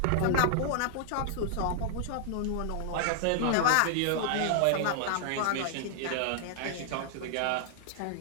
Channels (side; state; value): both; different; correlation -0.01